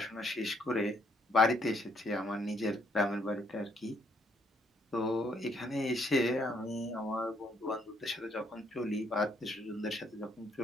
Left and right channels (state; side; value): normal; both; correlation 0.70